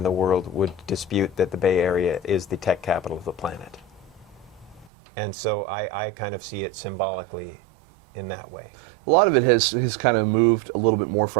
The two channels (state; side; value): drops out; left; at 4.9 s